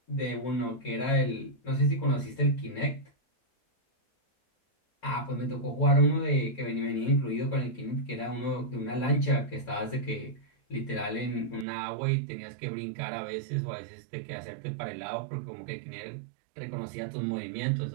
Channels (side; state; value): left; drops out; at 11.7 s